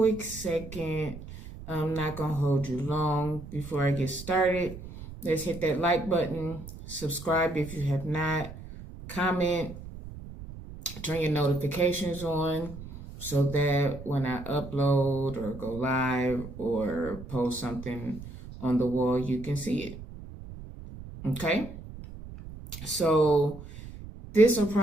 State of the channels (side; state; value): right; noise; rumble, 13 dB below the sound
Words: second. I'm not gonna hold you long. Before I get started, let's hit that like button, subscribe if you have not, comment, turn your notifications on so that when I upload or go live or post something on the wall, you can see it. Okay? So, this will